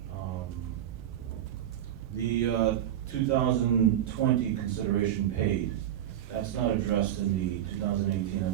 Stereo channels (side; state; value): left; quieter; 11.3 dB